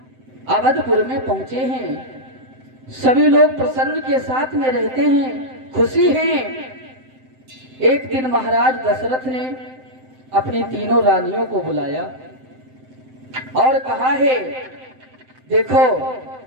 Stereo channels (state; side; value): late; left; 7.7 ms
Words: अवधपुर में पहुंचे हैं, सभी लोग प्रसन्न के साथ में रहते हैं, खुशी हैं। एक दिन महाराज दशरथ ने अपनी तीनों रानियों को बुलाया और कहा है, देखो